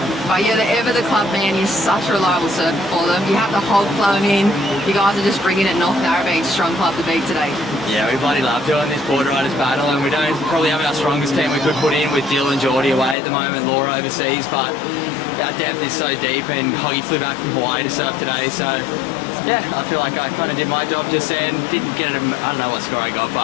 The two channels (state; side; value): drops out; right; at 13.2 s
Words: but you're ever the club man. You're such a reliable surfer for them. You have the hog flowing in. You guys are just bringing it North Narrabeen, strong club to beat today. Yeah, we bloody love doing this Boardriders battle, and we don't probably have our strongest team we could put in with Dylan and Geordie away at the moment, Laura overseas, but our depth is so deep, and Hoggy flew back from Hawaii to surf today, so yeah, I feel like I kind of did my job just then. Didn't get it, I don't know what score I got,